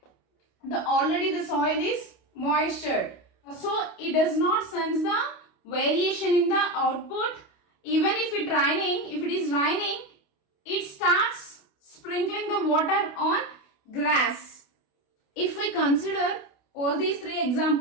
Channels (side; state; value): right; late; 28 ms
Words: already the soil is moisture. So it does not sense the variation in the output. Even if it is raining, it starts sprinkling the water on grass. If we consider all these three